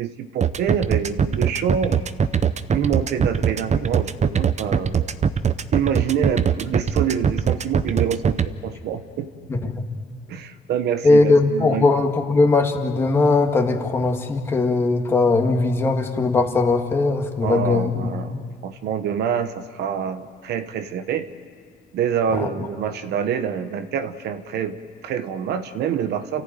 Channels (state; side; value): normal; both; correlation 0.60